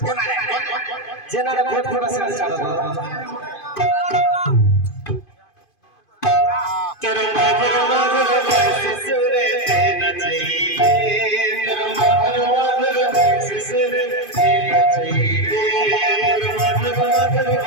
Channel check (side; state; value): right; late; 2.5 ms